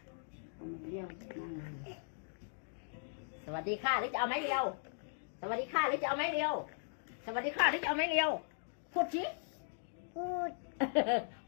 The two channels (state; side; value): silent; right; digital silence